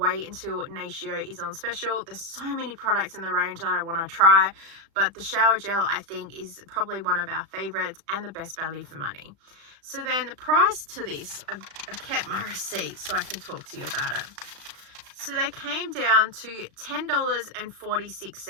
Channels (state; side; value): late; left; 36 ms